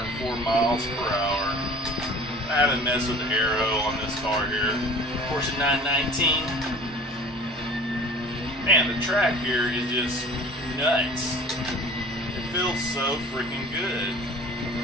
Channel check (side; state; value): both; normal; correlation 0.45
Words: miles per hour. I haven't messed with the aero on this car here. Porsche 919. Man, the track here is just nuts. It feels so freaking good.